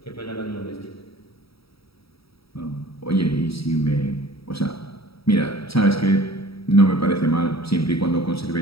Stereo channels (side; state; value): right; late; 0.76 ms